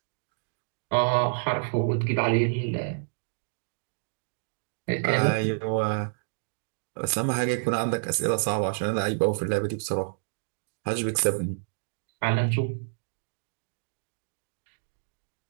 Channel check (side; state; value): left; silent; digital silence